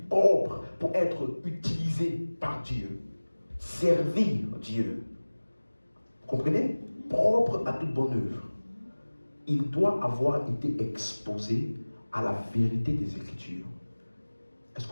propre pour être utilisé par Dieu, servir Dieu, comprenez? Propre à toute bonne œuvre, il doit avoir été exposé à la vérité des Écritures. Est-ce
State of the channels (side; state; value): both; inverted; correlation -1.00